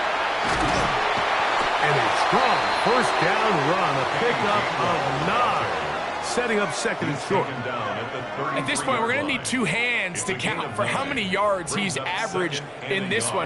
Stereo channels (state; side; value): identical; both; correlation 1.00